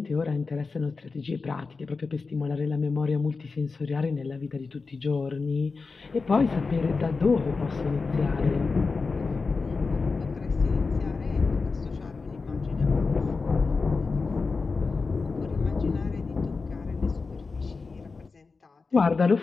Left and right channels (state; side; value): quieter; right; 4.3 dB